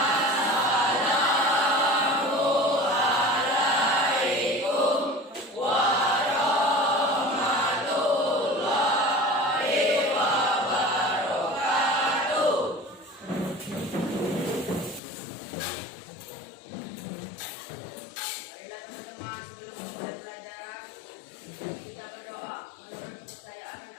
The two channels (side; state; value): right; drops out; at 15.0 s